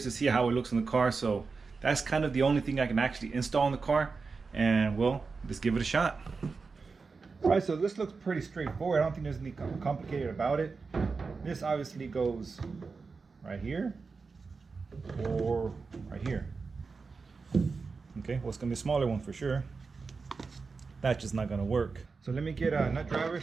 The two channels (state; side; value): quieter; left; 4.6 dB